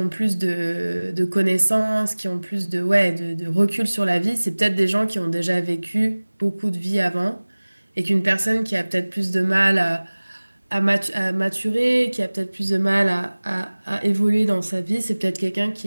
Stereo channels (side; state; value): both; inverted; correlation -1.00